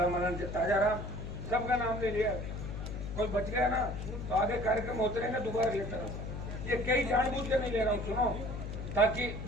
मनन जी, ताजा राम, सबका नाम ले लिया, कोई बच गया ना तो आगे कार्यक्रम होते रहेंगे, दोबारा लेता रहूंगा। ये कई जानबूझ के नहीं ले रहा हूँ, सुनो, ताकि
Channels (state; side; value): noise; left; hum, 6 dB below the sound